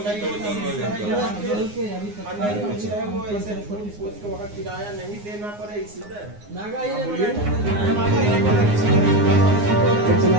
वो ऐसे किराया नहीं देना पड़े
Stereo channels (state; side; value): late; left; 9.7 ms